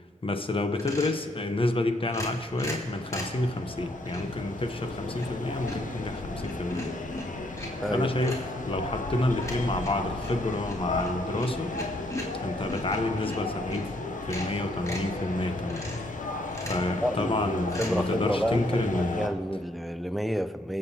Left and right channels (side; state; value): both; normal; correlation 0.70